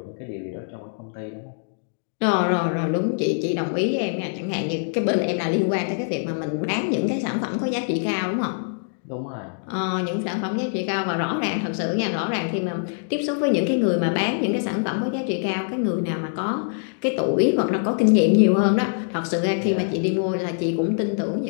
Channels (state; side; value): silent; right; digital silence